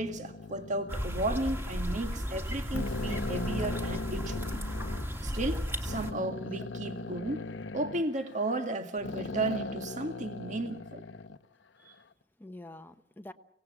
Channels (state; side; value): normal; both; correlation 0.45